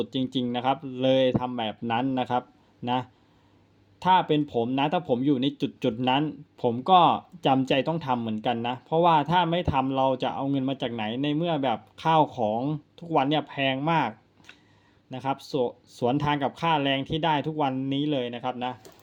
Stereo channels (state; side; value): identical; both; correlation 1.00